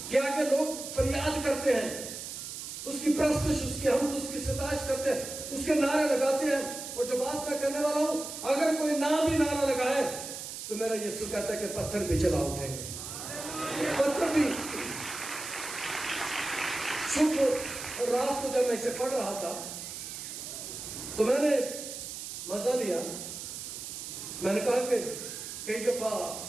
کے آگے لوگ فریاد کرتے ہیں، اس کی پرستش، اس کی حمد، اس کی ستائش کرتے ہیں، اس کے نعرے لگاتے ہیں. اور جو بات میں کرنے والا ہوں، اگر کوئی نام بھی نعرہ لگائے تو میرا یسوع کہتا ہے کہ پتھر بھی چلا اٹھیں گے، پتھر بھی. صبح اور رات کو جب میں اسے پڑھ رہا تھا تو میں نے مزہ لیا. میں نے کہا کہ کئی دفعہ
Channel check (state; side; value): noise; right; hiss, 8 dB below the sound